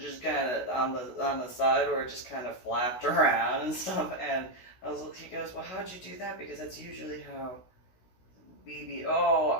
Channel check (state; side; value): late; right; 16 ms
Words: kind of on the side where it just kind of flapped around and stuff. And he goes, well, how'd you do that? Because that's usually how BB. Oh,